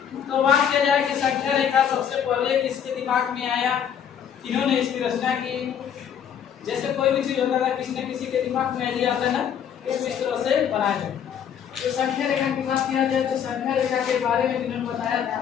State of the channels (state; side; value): quieter; right; 8.5 dB